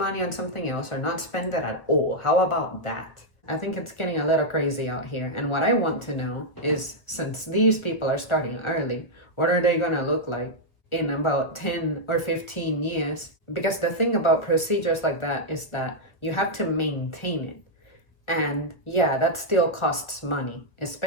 on something else or not spend it at all. How about that? I think it's getting a little crazy out here. And what I want to know is, since these people are starting early, what are they gonna look like in about 10 or 15 years? Because the thing about procedures like that is that you have to maintain it. And yeah, that still costs money,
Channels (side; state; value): right; late; 1.1 ms